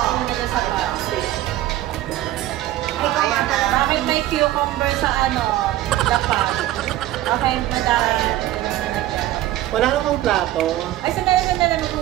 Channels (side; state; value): left; quieter; 14.6 dB